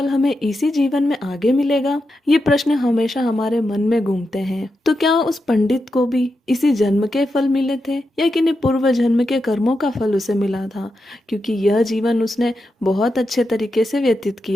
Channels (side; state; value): both; normal; correlation 0.87